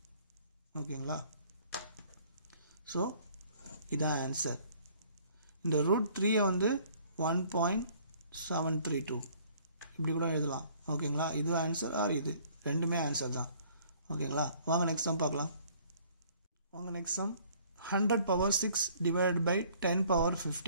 ஓகேங்களா? ஸோ இதான் ஆன்சர். இந்த √3 வந்து 1.732 இப்படி கூட எழுதலாம். ஓகேங்களா? இது ஆன்சர் ஆர் இது ரெண்டுமே ஆன்சர் தான். ஓகேங்களா? வாங்க நெக்ஸ்ட் சம் பார்க்கலாம். 100 பவர் 6 டிவைடட் பை 10 பவர்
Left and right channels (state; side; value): inverted; both; correlation -0.58